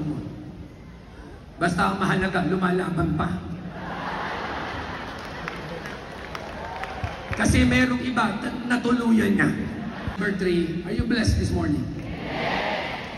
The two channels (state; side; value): identical; both; correlation 1.00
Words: mo. Basta ang mahalaga, lumalaban pa. Kasi merong iba, natuluyan niya. Number 3, are you blessed this morning?